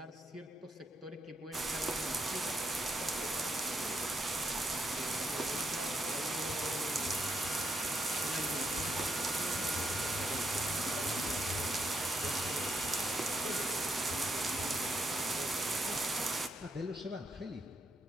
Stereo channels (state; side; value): normal; both; correlation 0.78